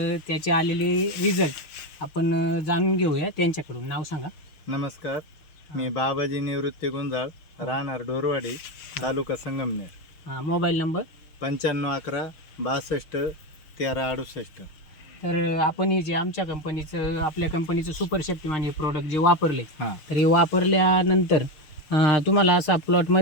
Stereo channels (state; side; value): late; right; 6.5 ms